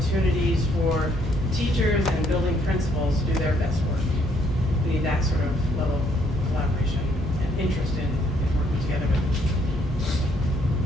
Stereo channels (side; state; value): both; normal; correlation 0.68